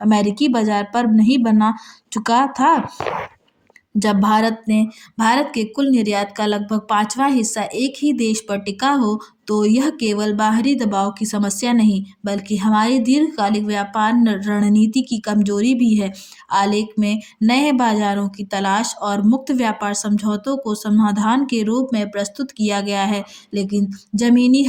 अमेरिकी बाजार पर नहीं बना चुका था। जब भारत के कुल निर्यात का लगभग 5वां हिस्सा एक ही देश पर टिका हो, तो यह केवल बाहरी दबाव की समस्या नहीं, बल्कि हमारी दीर्घकालिक व्यापार रणनीति की कमजोरी भी है। आलेख में नए बाजारों की तलाश और मुक्त व्यापार समझौतों को समाधान के रूप में प्रस्तुत किया गया है, लेकिन जमीनी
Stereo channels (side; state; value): both; identical; correlation 1.00